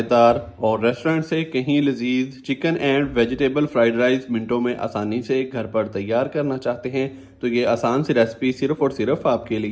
और रेस्टोरेंट से कहीं लजीज chicken and vegetable fried rice मिनटों में आसानी से घर पर तैयार करना चाहते हैं तो ये आसान सी रेसिपी सिर्फ और सिर्फ आपके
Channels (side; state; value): both; identical; correlation 1.00